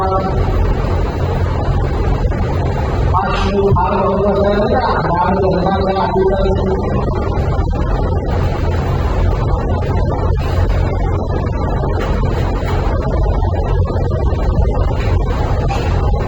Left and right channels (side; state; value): both; identical; correlation 1.00